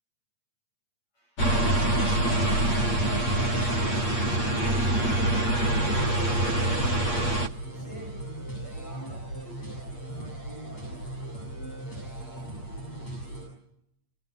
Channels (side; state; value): right; late; 8.5 ms